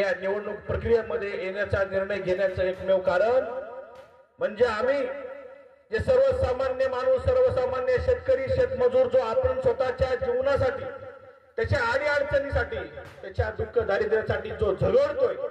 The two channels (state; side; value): identical; both; correlation 1.00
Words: या निवडणूक प्रक्रियेमध्ये येण्याचा निर्णय घेण्याचं एकमेव कारण म्हणजे आम्ही जे सर्वसामान्य माणूस, सर्वसामान्य शेतकरी, शेतमजूर जो आपण स्वतःच्या जीवनासाठी, त्याच्या अडीअडचणीसाठी, त्याच्या दुःख दारिद्र्यासाठी जो झगडतोय,